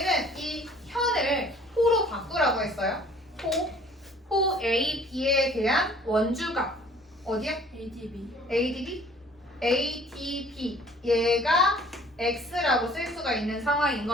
이 현을 호로 바꾸라고 했어요. 호 A, B에 대한 원주각. 어디야? ADB? ADB. 얘가 x라고 쓸 수가 있는 상황인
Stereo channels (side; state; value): both; normal; correlation 0.53